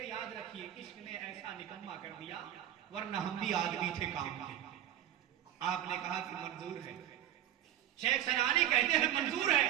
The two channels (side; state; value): left; quieter; 11.7 dB